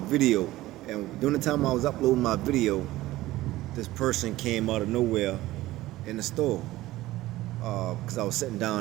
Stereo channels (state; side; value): quieter; left; 16.8 dB